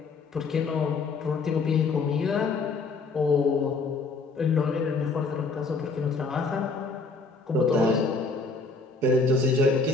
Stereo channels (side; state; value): right; quieter; 4.1 dB